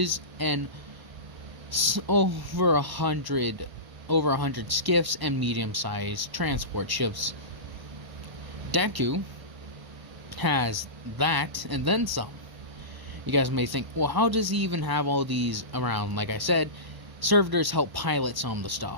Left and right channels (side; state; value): left; late; 1.0 ms